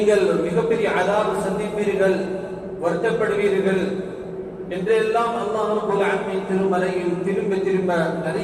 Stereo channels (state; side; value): identical; both; correlation 1.00